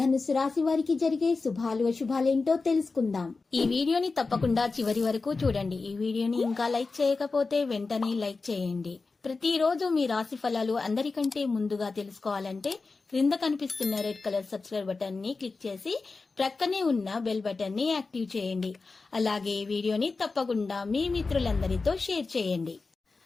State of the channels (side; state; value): right; quieter; 4.0 dB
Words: రాశి వారికి జరిగే శుభాలు అశుభాలేంటో తెలుసుకుందాం. ఈ వీడియోని తప్పకుండా చివరి వరకు చూడండి. ఈ వీడియోని ఇంకా లైక్ చేయకపోతే వెంటనే లైక్ చేయండి. ప్రతిరోజు మీ రాశి ఫలాలు అందరికంటే ముందుగా తెలుసుకోవాలంటే క్రింద కనిపిస్తున్న రెడ్ కలర్ సబ్స్క్రైబ్ బటన్ ని క్లిక్ చేసి ప్రక్కనే ఉన్న బెల్ బటన్ ని యాక్టివ్ చేయండి. అలాగే వీడియోని తప్పకుండా మీ మిత్రులందరితో షేర్ చేయండి.